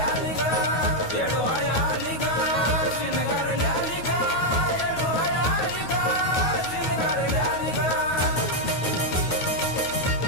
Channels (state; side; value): late; right; 9.3 ms